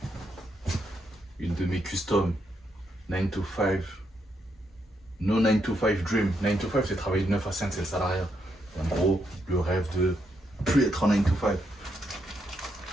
Une de mes customs, 9 to 5. No 9 to 5 dream. 9 to 5, c'est travailler de 9 à 5, c'est le salariat. En gros, le rêve de plus être en 9 to 5.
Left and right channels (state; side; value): normal; both; correlation 0.79